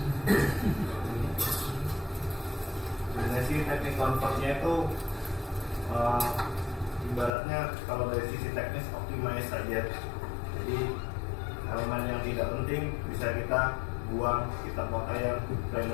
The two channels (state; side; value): drops out; right; at 7.3 s